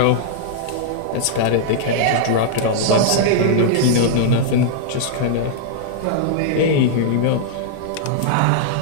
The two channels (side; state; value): both; different; correlation -0.01